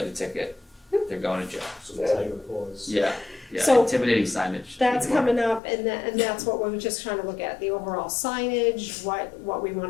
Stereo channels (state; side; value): drops out; right; at 5.6 s